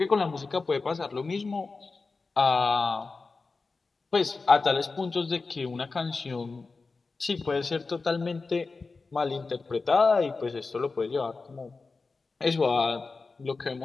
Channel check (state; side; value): quieter; right; 4.1 dB